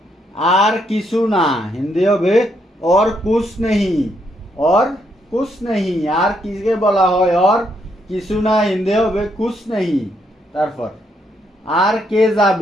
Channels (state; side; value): normal; both; correlation 0.75